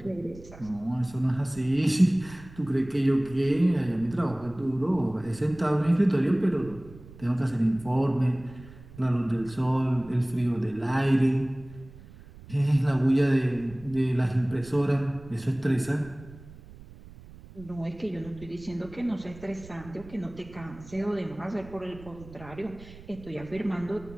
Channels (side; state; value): right; noise; rumble, 19 dB below the sound